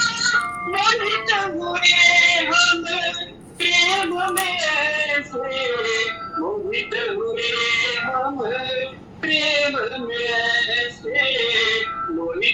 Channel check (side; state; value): both; identical; correlation 1.00